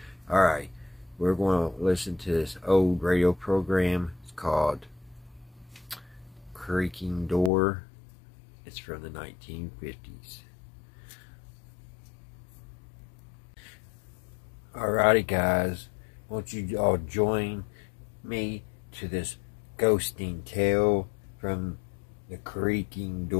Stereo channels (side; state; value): right; drops out; at 7.5 s